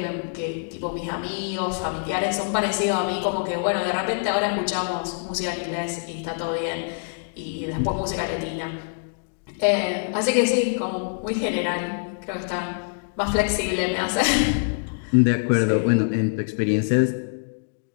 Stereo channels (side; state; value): right; silent; digital silence